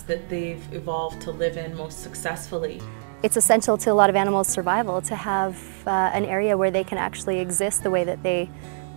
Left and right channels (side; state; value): left; silent; digital silence